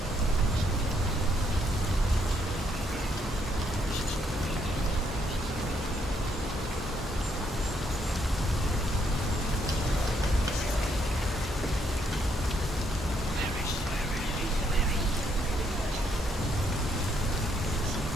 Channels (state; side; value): normal; both; correlation 0.73